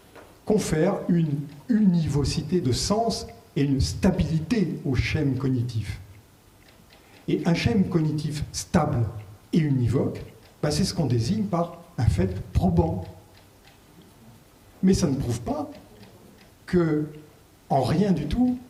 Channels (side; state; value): both; identical; correlation 1.00